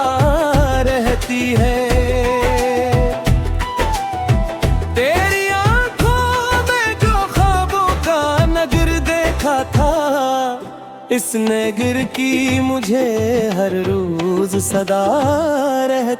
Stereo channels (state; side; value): identical; both; correlation 1.00